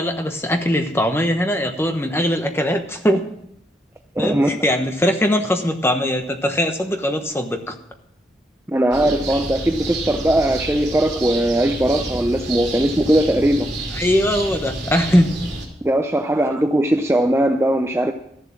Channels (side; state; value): both; normal; correlation 0.79